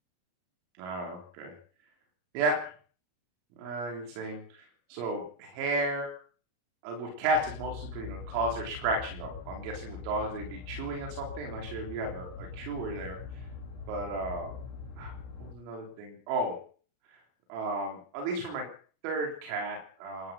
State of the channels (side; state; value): left; late; 34 ms